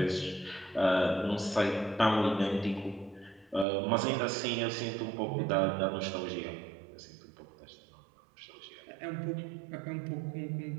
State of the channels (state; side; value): drops out; left; at 3.7 s